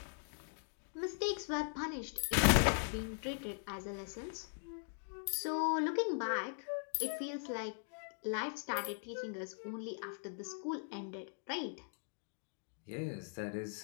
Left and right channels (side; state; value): right; silent; digital silence